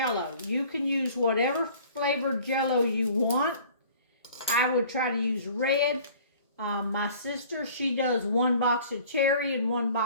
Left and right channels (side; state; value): both; inverted; correlation -0.50